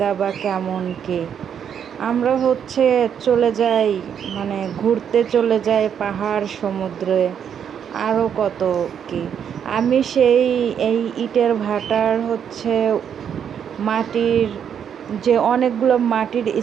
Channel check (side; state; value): left; quieter; 8.3 dB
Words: বা কেমন কি। আমরা চলে যাই, মানে ঘুরতে চলে যাই পাহাড় সমুদ্রে, আরও কত কি। আমি এই ইটের ভাটার মাটির যে অনেকগুলো মাটির